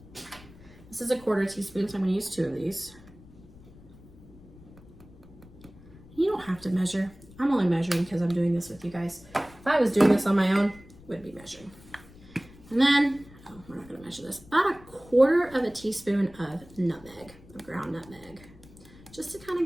This is a 1/4 teaspoon, so I'm gonna use 2 of these. You don't have to measure. I'm only measuring because I'm doing this with you guys. If I was doing this on my own, I wouldn't be measuring. And then, oh, we're not gonna measure this, about a 1/4 teaspoon of nutmeg, of ground nutmeg, just to kind of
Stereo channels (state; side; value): noise; left; rumble, 22 dB below the sound